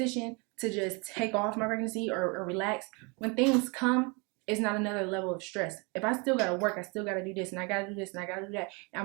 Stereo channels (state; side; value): quieter; left; 30.6 dB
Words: to just take off my pregnancy or relax, when things come, it's not another level of stress. If I still gotta work, I still gotta do this and I gotta do this and I gotta do that, and